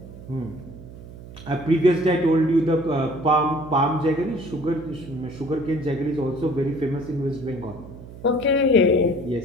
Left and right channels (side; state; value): right; noise; hum, 16 dB below the sound